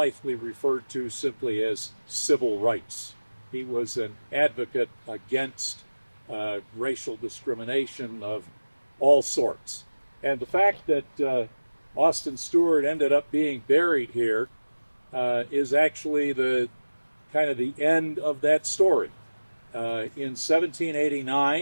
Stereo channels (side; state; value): both; inverted; correlation -1.00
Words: referred to simply as civil rights. He was an advocate against racial discrimination of all sorts. And the fact that Austin Steward ended up being buried here is actually the kind of the end of that story. In